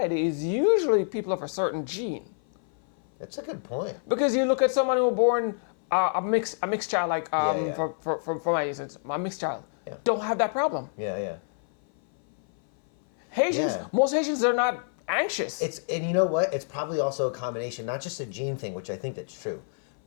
is usually people of a certain gene. That's a good point. Because you look at someone who was born a mixed child, like Yeah. for my instance, my mixed child, Yeah. don't have that problem. Yeah. Haitians, Yeah. most Haitians are not anxious. And you know what? It's probably also a combination, not just a gene thing, which I think that's true,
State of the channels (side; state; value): right; silent; 57 dB below the other